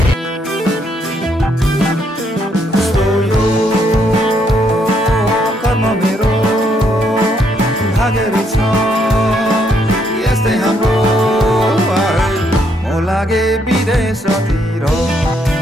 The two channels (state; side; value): normal; both; correlation 0.73